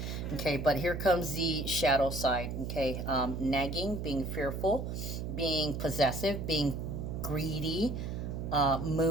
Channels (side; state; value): right; noise; hum, 4 dB below the sound